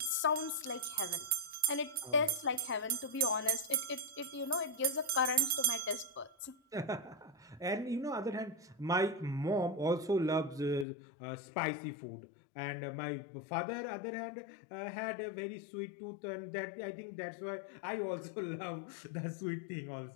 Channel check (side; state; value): right; drops out; at 10.9 s